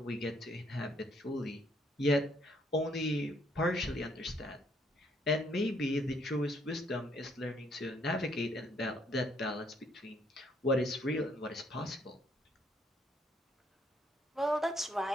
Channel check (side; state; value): both; normal; correlation 0.68